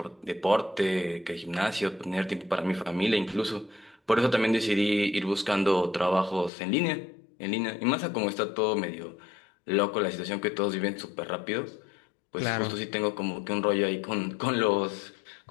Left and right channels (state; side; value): drops out; right; at 6.5 s